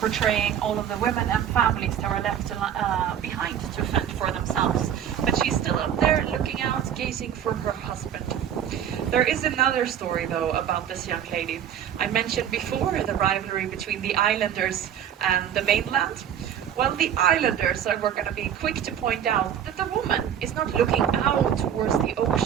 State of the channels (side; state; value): left; quieter; 9.5 dB